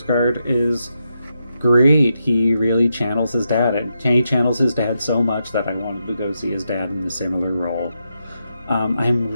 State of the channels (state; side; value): inverted; both; correlation -0.84